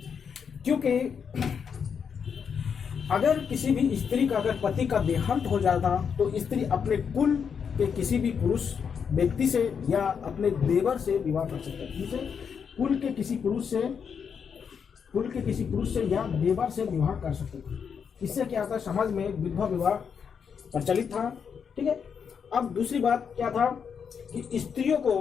क्योंकि अगर किसी भी स्त्री का अगर पति का देहांत हो जाता तो स्त्री अपने कुल के किसी भी पुरुष व्यक्ति से या अपने देवर से विवाह कर सकता है। जिसे कुल के किसी पुरुष से या देवर से विवाह कर सकते थे। इससे क्या था, समाज में विधवा विवाह प्रचलित था। ठीक है, अब दूसरी बात क्या था कि स्त्रियों को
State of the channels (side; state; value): right; quieter; 6.8 dB